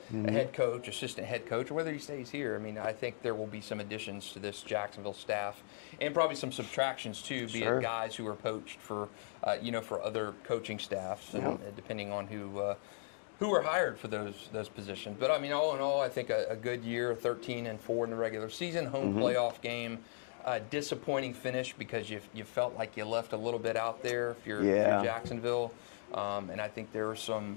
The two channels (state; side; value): silent; right; digital silence